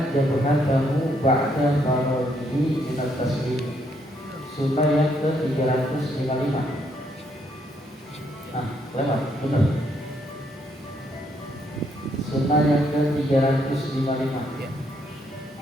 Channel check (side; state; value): both; normal; correlation 0.72